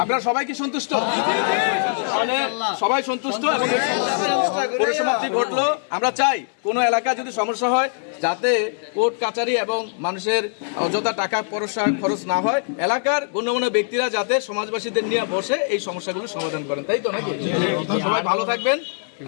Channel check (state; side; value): silent; right; 63 dB below the other